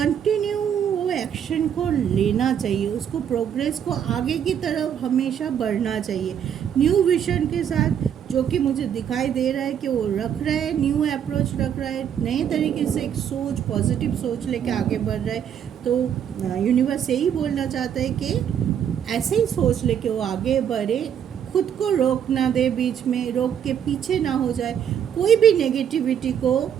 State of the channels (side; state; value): left; quieter; 8.8 dB